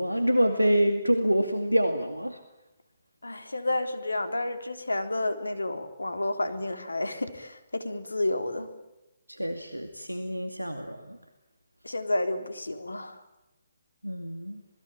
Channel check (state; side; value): inverted; both; correlation -0.95